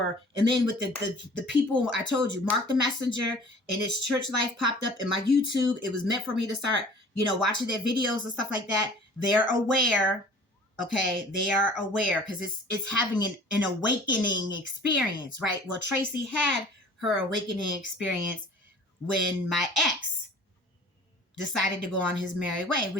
And then with the people, I told you, Mark the Messenger and his church life popped up in my YouTube. It was meant for me to start, watching their videos and stuff like that. They're aware. Okay, they are aware because it's having an awakening experience, right? Well, Traci had her awakening experience when my ex decided to go on his merry way,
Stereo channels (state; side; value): normal; both; correlation 0.47